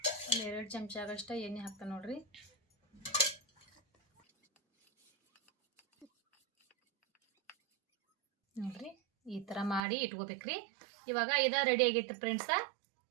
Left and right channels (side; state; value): left; drops out; at 9.8 s